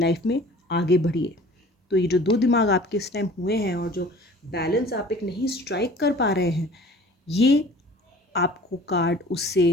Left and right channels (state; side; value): normal; both; correlation 0.47